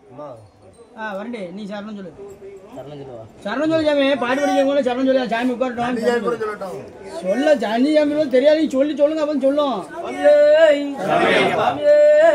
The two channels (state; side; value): identical; both; correlation 1.00